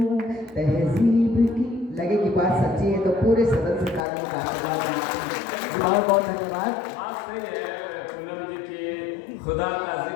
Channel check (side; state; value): right; drops out; at 4.0 s